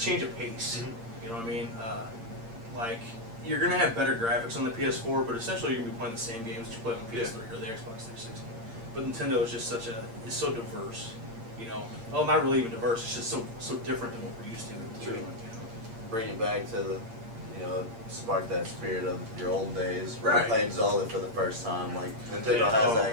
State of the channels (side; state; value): left; late; 8.7 ms